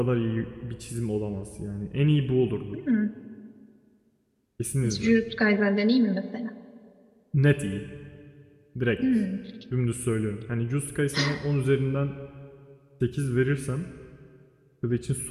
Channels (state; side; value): identical; both; correlation 1.00